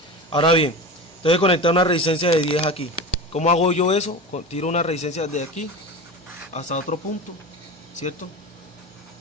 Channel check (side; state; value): both; normal; correlation 0.28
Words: Ahora bien, tengo que conectar una resistencia de 10 aquí. ¿Cómo hago yo eso? Tiro una resistencia de aquí hasta otro punto, ¿cierto?